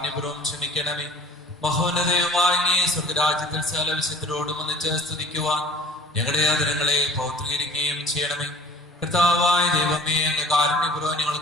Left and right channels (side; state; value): both; normal; correlation 0.49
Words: ക്ഷമിക്കണമേ. മഹോന്നതയുമായ അങ്ങേ സ്വർഗരാജ്യത്തിൽ സകല വിശുദ്ധരോടും ഒന്നിച്ച് സ്തുതിക്കുവാൻ ഞങ്ങളുടെ ആദരങ്ങളെ പൗത്രീകരിക്കുകയും ചെയ്യണമേ. കർത്താവായ ദൈവമേ, അങ്ങ് കാരുണ്യപൂർവ്വം